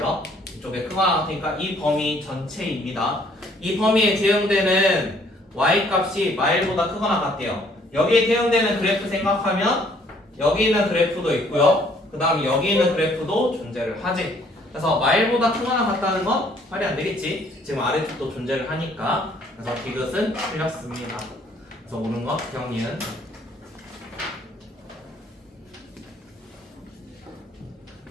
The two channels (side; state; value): both; normal; correlation 0.62